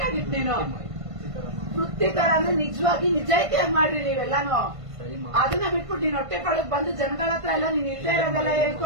ನೀನು. ವೃತ್ತಿ ತರ ಅಂದ್ರೆ ನಿಜವಾಗಿ ನಿಜಾಯಿತಿಯಾಗಿ ಮಾಡ್ರಿ ನೀವೆಲ್ಲಾನು. ಅದನ್ನ ಬಿಟ್ಬಿಟ್ಟು ನೀನ್ ಹೊಟ್ಟೆ ಪಾಳಕ್ ಬಂದು ಜನಗಳ ಹತ್ರ ಎಲ್ಲ ನೀನ್ ಇಲ್ಲದೆ ಇರೋದೆಲ್ಲ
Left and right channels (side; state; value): left; late; 1.5 ms